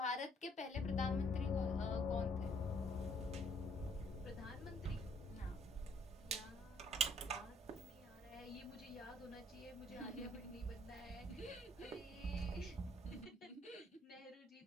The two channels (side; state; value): both; normal; correlation 0.65